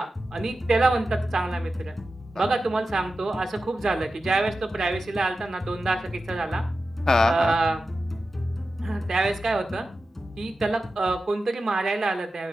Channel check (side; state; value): both; normal; correlation 0.93